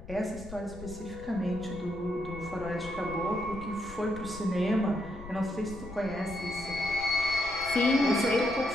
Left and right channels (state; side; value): noise; left; rumble, 14 dB below the sound